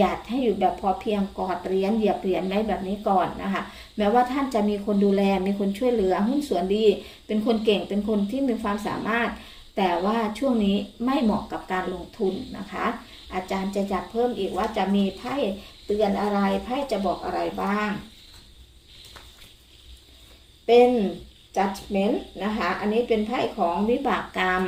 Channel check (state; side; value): identical; both; correlation 1.00